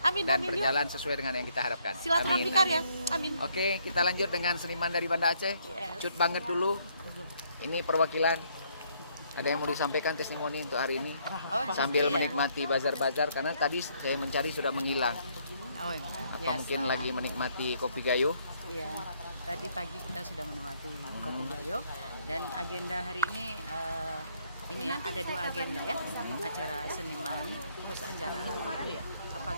dan amin, berjalan sesuai dengan yang kita harapkan. Silaturahmi Amin. karya. Amin. Oke, kita lanjut dengan seniman dari Banda Aceh. Yes. Cut banget dulu. Ini perwakilan. Ada yang mau disampaikan testimoni untuk hari ini? Sambil menikmati bazar-bazar karena tadi saya mencari sudah menghilang. Oh, Apa mungkin lagi menikmati kopi gayo? Iya, tadi pagi kita sudah menikmati kopi gayo dan agenda hari ini ya ada 2 agenda ya, acara seniman terus acara itu ya apa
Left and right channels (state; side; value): inverted; both; correlation -0.69